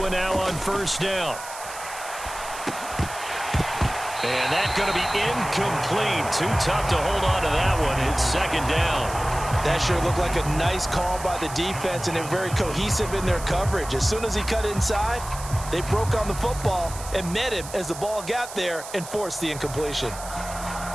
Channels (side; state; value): right; noise; hiss, 12 dB below the sound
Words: now on first down. And that's going to be incomplete. Too tough to hold on to that one. It's second down. That sure looked like a nice call by the defense, and they're very cohesive in their coverage. As soon as he cut inside, they broke on the football and met him as the ball got there and forced the incompletion.